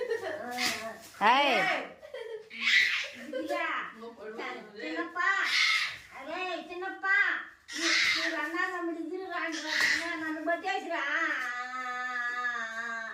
చిన్నప్ప అరే చిన్నప్ప అన్నా తమ్ముడు ఇద్దరు రాండి నన్ను పట్టేసిరా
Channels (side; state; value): both; identical; correlation 1.00